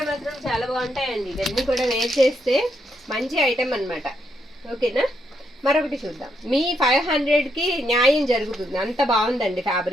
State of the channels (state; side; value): normal; both; correlation 0.78